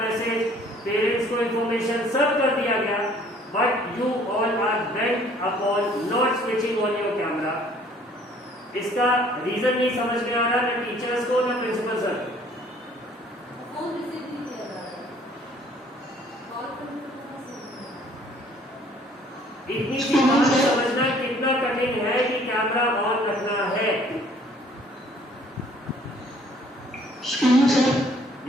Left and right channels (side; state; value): both; normal; correlation 0.57